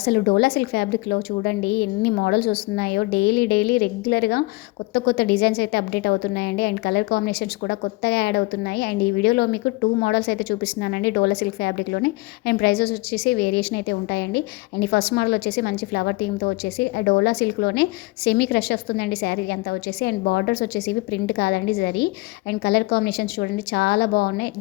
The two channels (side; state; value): right; quieter; 23.1 dB